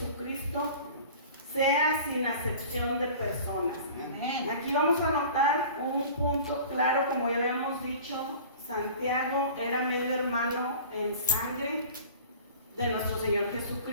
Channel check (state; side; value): inverted; both; correlation -0.42